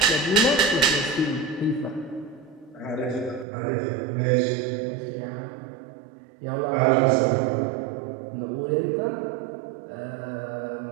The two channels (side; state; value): left; drops out; at 3.5 s